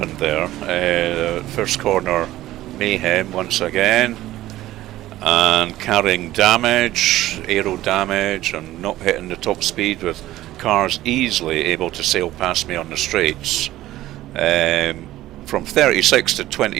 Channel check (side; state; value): left; quieter; 15.2 dB